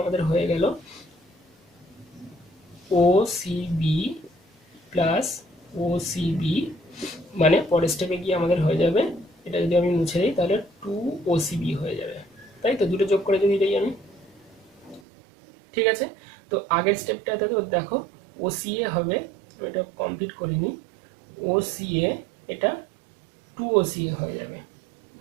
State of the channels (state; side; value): drops out; left; at 15.0 s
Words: আমাদের হয়ে গেল ওসিবি প্লাস ওসিবি, মানে পরের স্টেপে গিয়ে আমাদের হয়ে যাবে, এটা যদি আমি মুছে দিই তাহলে 2 ওসিবি হয়ে যাবে, তাই তো দুটো যোগ করে যদি দিই আমি। ঠিক আছে, তো আগের স্টেপটাতে তো দেখো ওসিএ হবে, আমি এটা কমপ্লিট করিনি, ওসিএ এটা 2 ওসিএ হয়ে যাবে,